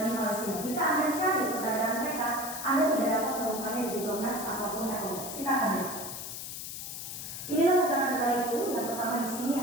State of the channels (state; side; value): noise; left; hiss, 8 dB below the sound